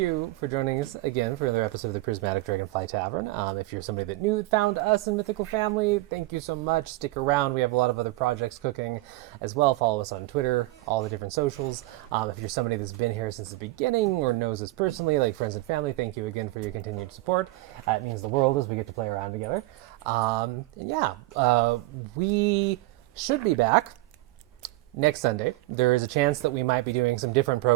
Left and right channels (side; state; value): left; quieter; 19.6 dB